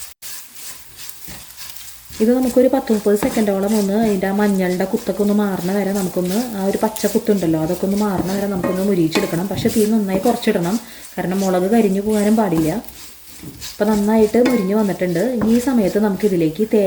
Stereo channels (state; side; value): identical; both; correlation 1.00